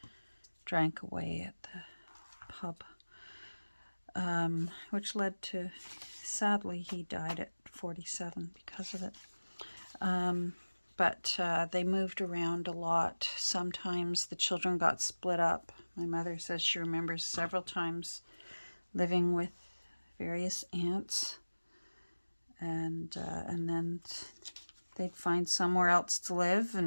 drank away at the pub. Which led to, sadly, he died at 47 because of it. But they moved around a lot. Sometimes the children got split up. My mother says she remembers several times living with various aunts, and then they'd find somewhere else to live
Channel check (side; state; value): both; inverted; correlation -1.00